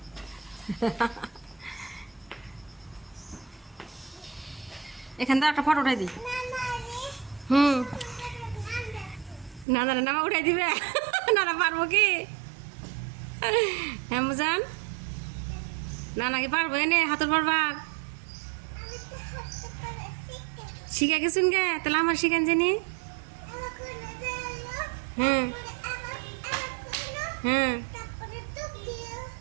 এখান থেকে একটা ফটো উঠাই দিই। হুম না না না উঠাই দিবে না না পারবো কি হ্যাঁ মুজান না নাকি পারবো এনে হাতুর পারবার শিখে গেছুন গে তাহলে আমার শিখেন জানি। হ্যাঁ হ্যাঁ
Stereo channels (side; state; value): left; drops out; at 9.7 s